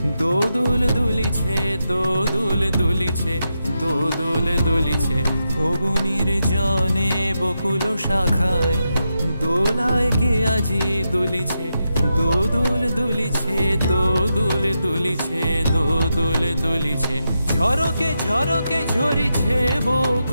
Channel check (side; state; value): both; inverted; correlation -0.86